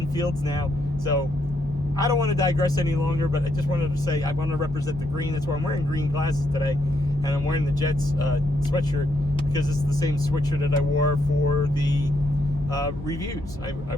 Fields now. So I don't want to digress any longer, but I just wanted to say I want to represent the green. That's why I'm wearing green glasses today, and I'm wearing the Jets sweatshirt, because it's the same sweatshirt that I wore for the reviews. I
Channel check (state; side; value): normal; both; correlation 0.76